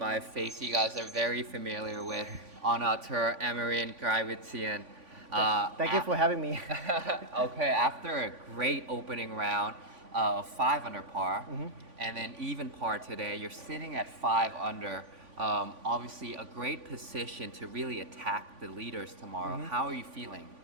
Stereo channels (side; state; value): left; late; 3.5 ms